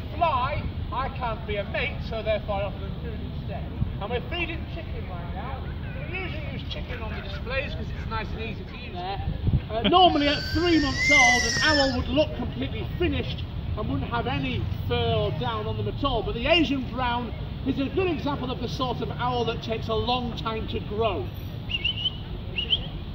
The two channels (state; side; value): identical; both; correlation 1.00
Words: fly, I can't be a mate, so therefore I offer them food instead. And we're feeding chicken right now. We usually use chicken on the displays because it's nice and easy to use there. Normally at 3 months old, an owl would look completely finished and wouldn't have any fur or down on them at all. But the Asian brown is a good example of the sort of owl that takes a long time to grow.